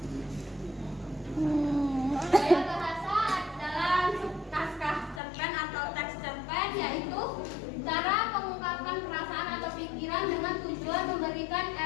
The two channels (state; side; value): drops out; right; at 5.2 s